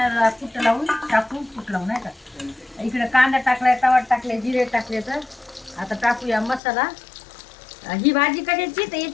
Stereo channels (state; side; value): drops out; right; at 6.6 s